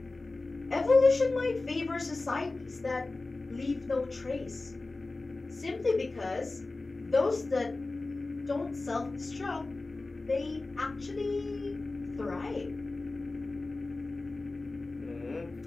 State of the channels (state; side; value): quieter; right; 3.3 dB